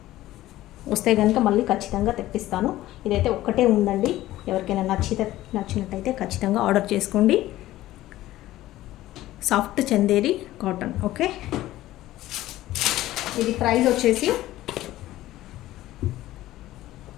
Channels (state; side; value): quieter; right; 15.4 dB